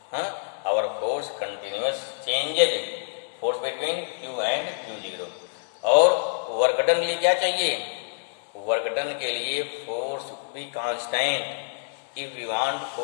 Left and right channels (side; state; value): right; silent; digital silence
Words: our force continuous changes force between q and q zero. और वर्क डन के लिए क्या चाहिए, वर्क डन के लिए force should be constant. If we want